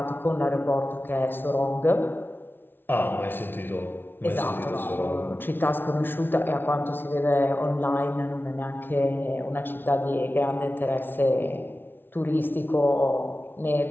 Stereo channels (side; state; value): right; late; 0.10 ms